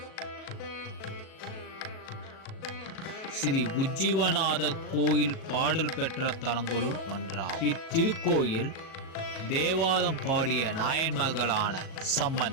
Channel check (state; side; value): late; right; 37 ms